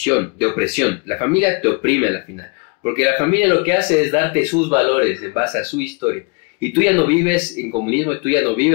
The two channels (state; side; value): quieter; right; 29.7 dB